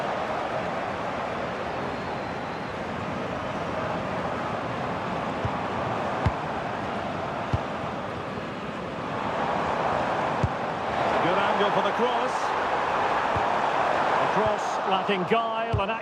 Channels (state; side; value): identical; both; correlation 1.00